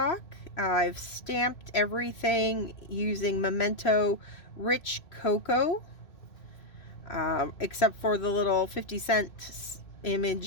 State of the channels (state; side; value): late; right; 2.6 ms